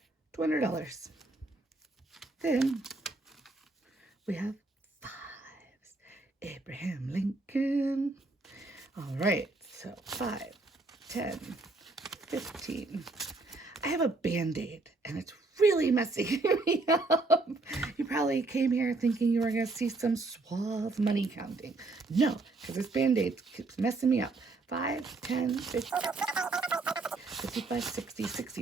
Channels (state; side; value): quieter; left; 3.4 dB